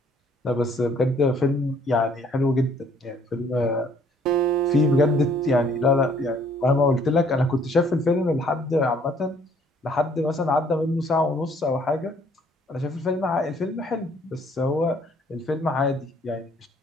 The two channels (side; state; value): both; normal; correlation 0.61